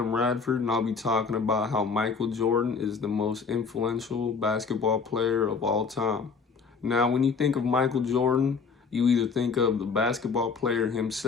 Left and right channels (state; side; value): quieter; right; 5.2 dB